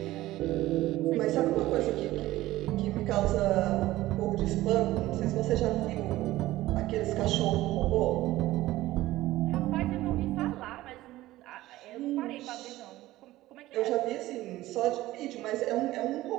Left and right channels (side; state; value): left; quieter; 16.6 dB